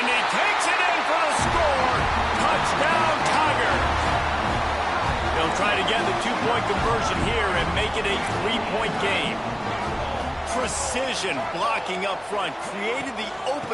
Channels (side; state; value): both; identical; correlation 1.00